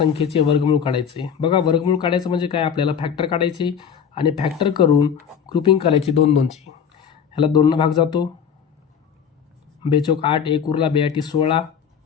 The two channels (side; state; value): right; quieter; 7.5 dB